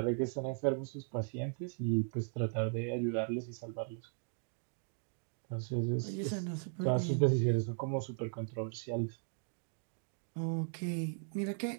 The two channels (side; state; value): left; silent; 53 dB below the other